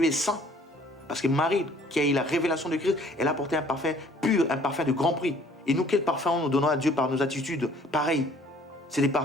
est saint. Parce que Marie, qui a eu la révélation de Christ, elle a apporté un parfum pur, un parfum de grand prix. Et nous, quel parfum nous donnons à Dieu par nos attitudes? Pareil. C'est des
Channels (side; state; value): both; normal; correlation 0.56